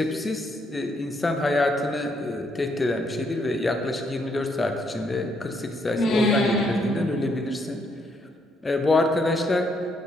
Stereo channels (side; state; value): both; normal; correlation 0.73